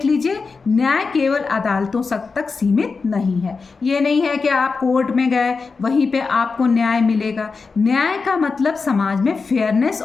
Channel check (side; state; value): right; quieter; 4.6 dB